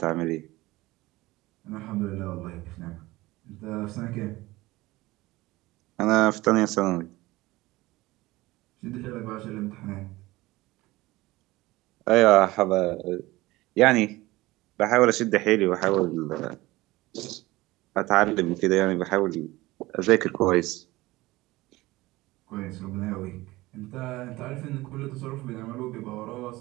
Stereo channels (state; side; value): quieter; left; 19.4 dB